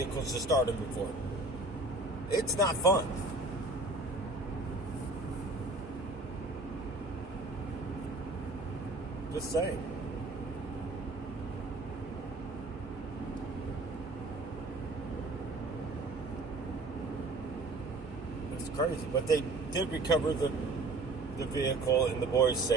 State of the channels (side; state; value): left; quieter; 3.1 dB